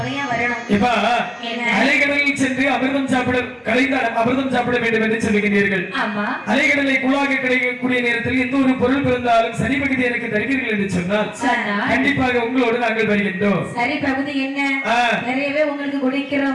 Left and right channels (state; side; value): identical; both; correlation 1.00